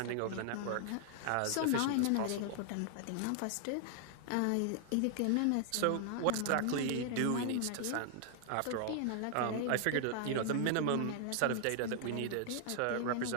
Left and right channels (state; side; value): different; both; correlation 0.00